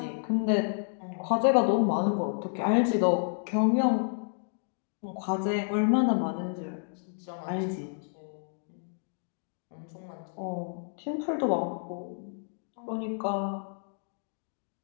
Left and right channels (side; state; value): right; silent; digital silence